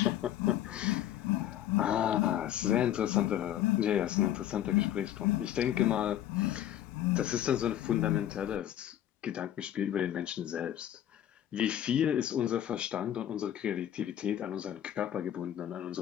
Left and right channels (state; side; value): quieter; right; 11.6 dB